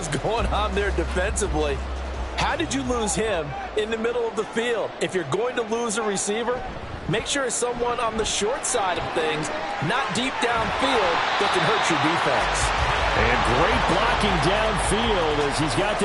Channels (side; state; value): both; identical; correlation 1.00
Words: going on there defensively. How did you lose him in the middle of the field? If you're going to lose a receiver, make sure it's someone on the short side of things, not deep downfield, that can hurt your defense. And great blocking downfield as he's got